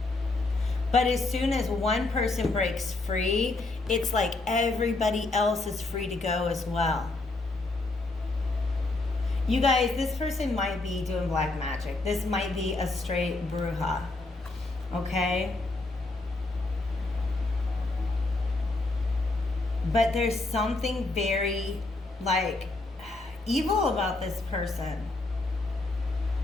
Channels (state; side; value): quieter; right; 3.1 dB